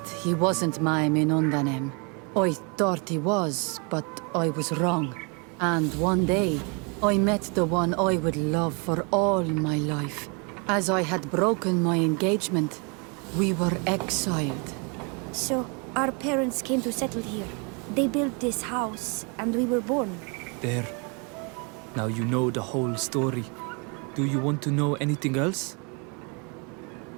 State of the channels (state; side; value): quieter; left; 33.9 dB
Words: he wasn't my Minundanem. I thought he was, but I was wrong. And one day, I met the one I would love for all my life. As I had broken my engagement, we were exiled. So, our parents came to settle here. They built this house, and we were born. There. Now you know the whole story. Do you want to know anything else?